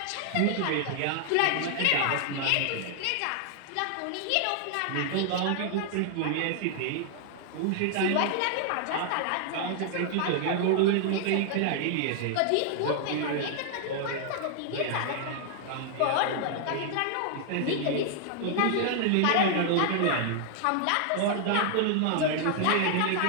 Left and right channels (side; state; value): both; different; correlation 0.00